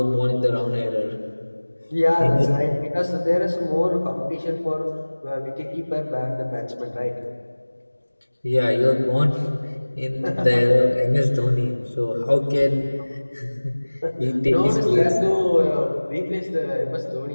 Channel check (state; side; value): inverted; both; correlation -1.00